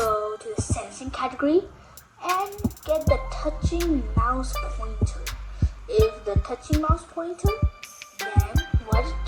to the sensing category and get the touching mouse pointer. If the touching mouse pointer, then what it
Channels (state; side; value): identical; both; correlation 1.00